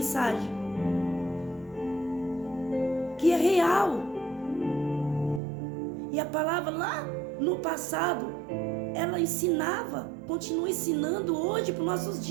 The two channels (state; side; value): drops out; left; at 5.4 s